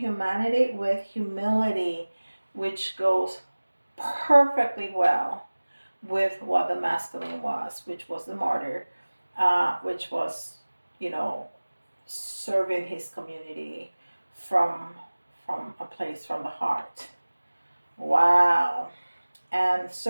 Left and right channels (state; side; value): inverted; both; correlation -1.00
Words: with humility, which goes perfectly well with what the masculine was, which was the martyr, which was, you know, serving his community from a place from the heart. Wow. And